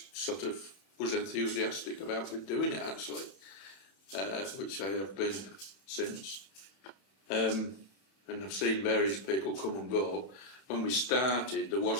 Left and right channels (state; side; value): late; right; 31 ms